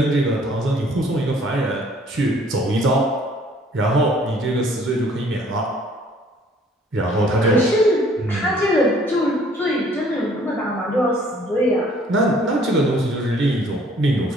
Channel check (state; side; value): normal; both; correlation 0.58